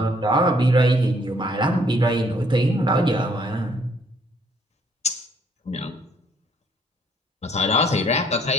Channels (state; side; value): normal; both; correlation 0.64